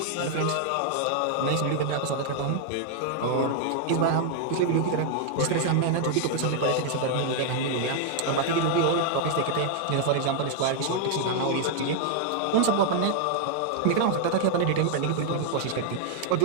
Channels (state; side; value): different; both; correlation 0.00